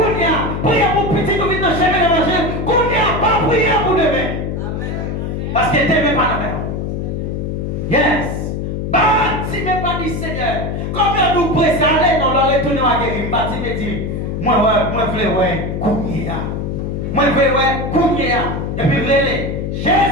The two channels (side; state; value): left; noise; hum, 3 dB below the sound